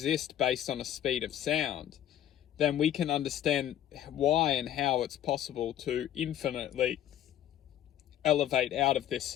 based on a speed of sound, then we can understand why and how it's possible to infinitely elevate out of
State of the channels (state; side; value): quieter; right; 11.4 dB